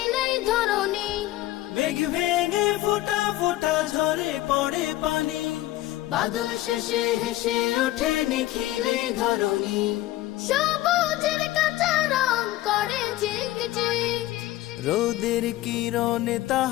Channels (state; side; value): quieter; right; 16.1 dB